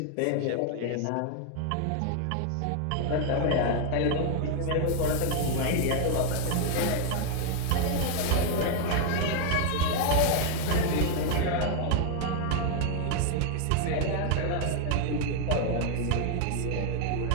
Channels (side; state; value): both; different; correlation 0.00